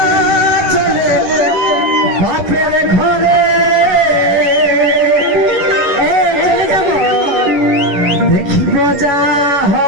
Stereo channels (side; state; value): left; late; 11 ms